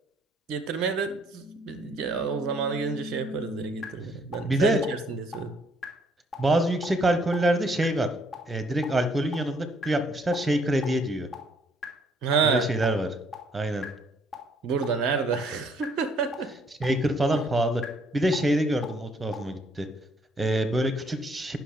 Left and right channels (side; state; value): both; normal; correlation 0.66